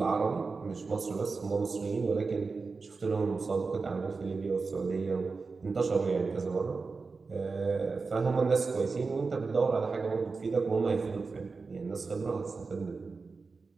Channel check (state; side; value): quieter; left; 4.4 dB